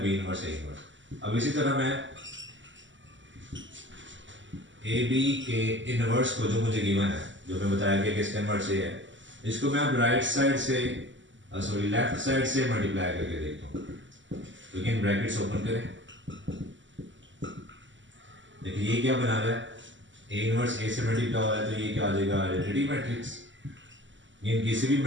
बी इनवर्स ए इनवर्स। अब इसी तरह मैं ए बी के इनवर्स को जो मुझे गिवन है, जो मैं बताया कि इसका इनवर्स ये है, इसको मैं अब राइट साइड से सॉरी लेफ्ट साइड से मल्टीप्लाई करके देखता हूँ। तो अगेन ब्रैकेट्स ओपन करें, देखिए ये क्या बना रहा है, ए इनवर्स ए से मल्टीप्लाई हो रहा है तो ये क्या आ जाएगा आइडेंटिटी मैट्रिक्स। ये किसी भी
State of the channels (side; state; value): left; late; 0.54 ms